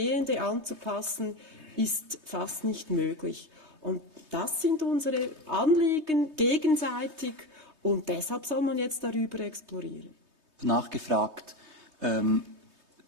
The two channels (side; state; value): left; late; 3.2 ms